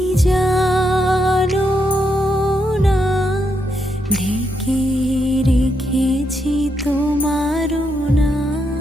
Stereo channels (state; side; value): normal; both; correlation 0.80